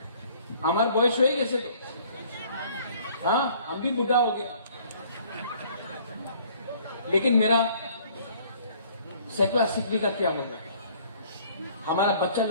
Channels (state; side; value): inverted; both; correlation -0.57